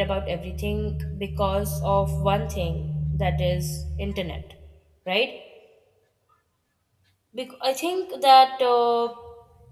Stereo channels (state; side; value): identical; both; correlation 1.00